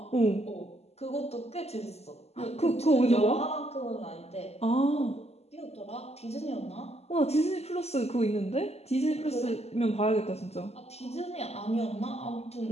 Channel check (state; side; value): late; right; 0.30 ms